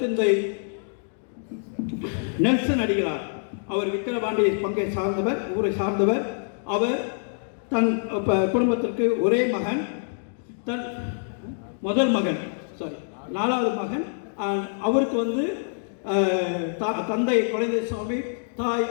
நெல்சன் அடிகளார், அவர் விக்கிரவாண்டி பங்கை சார்ந்தவர், ஊரை சார்ந்தவர். அவர் தன் குடும்பத்திற்கு ஒரே மகன், தன் முதல் மகன், நாலாவது மகன். அவருக்கு தந்தை குழந்தை சுவாமி, தாய்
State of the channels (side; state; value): right; silent; digital silence